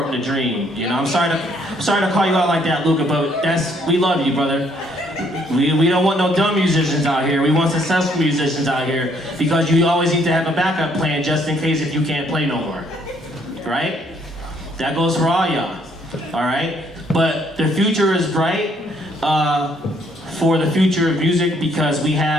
the dream. I'm sorry to call you out like that, Luca, but we love you, brother. We don't want no dumb musicians out here. We want successful musicians out here, because you always need to have a backup plan just in case if you can't play no more. Right? That goes for all y'all. All right? But the future is bright for the future of music, because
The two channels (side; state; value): both; normal; correlation 0.67